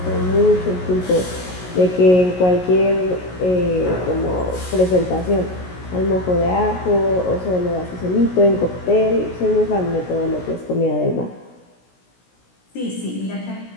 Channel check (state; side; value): late; right; 16 ms